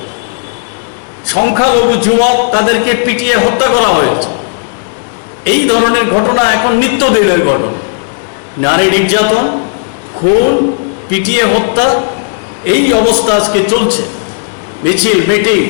সংখ্যালঘু যুবক তাদেরকে পিটিয়ে হত্যা করা হয়েছে। এই ধরনের ঘটনা এখন নিত্যদিনের ঘটনা। নারী নির্যাতন, খুন, পিটিয়ে হত্যা, এই অবস্থা আজকে চলছে। মিছিল মিটিং,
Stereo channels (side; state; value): right; silent; digital silence